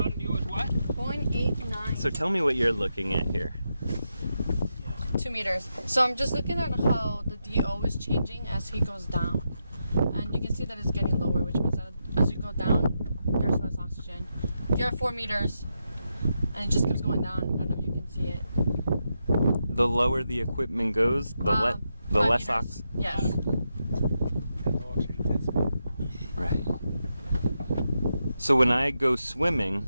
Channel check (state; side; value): inverted; both; correlation -0.85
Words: DO is what? 0.89. So tell me what you're looking at here. 2 meters. So I'm just looking at how the DO is changing as he goes down. And you can see that it's getting lower, which means that as you go down, there's less oxygen. You're at 4 meters, and it just keeps going down. I don't know if you can see it. The lower the equipment goes, the less oxygen. Yes. Right. So when I go swimming